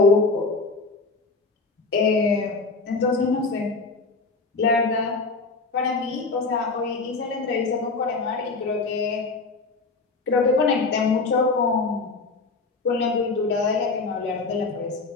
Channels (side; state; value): right; quieter; 3.9 dB